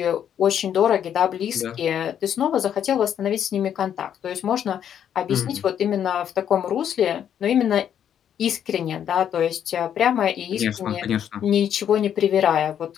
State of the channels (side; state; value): right; quieter; 9.3 dB